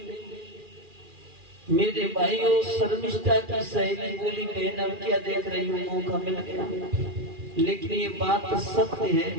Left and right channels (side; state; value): left; late; 2.4 ms